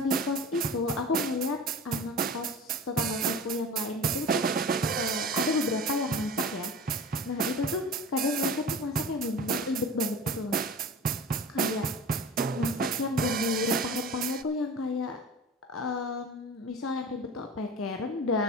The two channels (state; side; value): normal; both; correlation 0.36